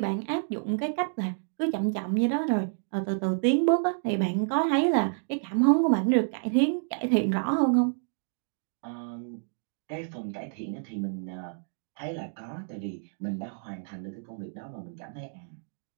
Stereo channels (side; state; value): left; silent; digital silence